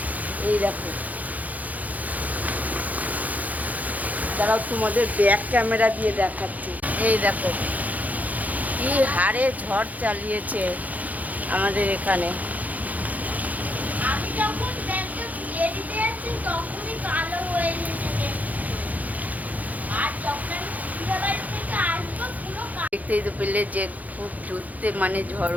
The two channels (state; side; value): late; left; 0.078 ms